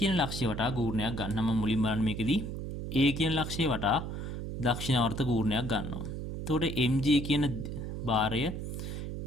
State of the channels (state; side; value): noise; right; hum, 6 dB below the sound